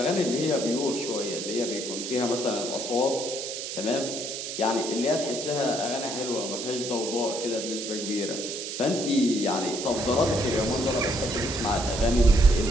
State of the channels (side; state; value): right; noise; hiss, 6 dB below the sound